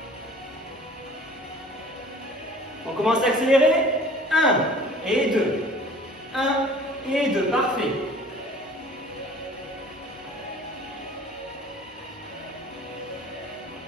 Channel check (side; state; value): both; normal; correlation 0.48